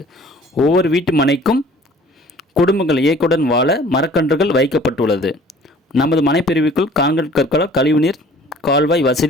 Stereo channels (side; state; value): both; normal; correlation 0.51